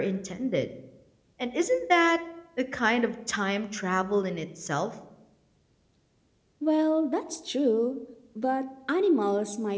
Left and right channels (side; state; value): both; identical; correlation 1.00